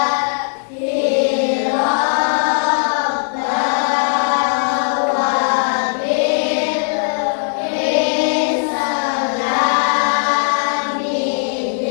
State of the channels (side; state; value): right; silent; digital silence